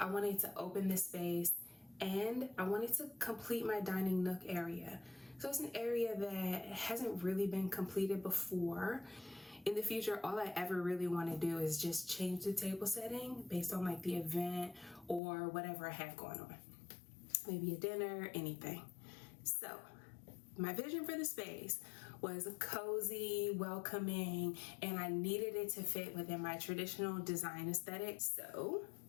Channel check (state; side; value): drops out; right; at 15.2 s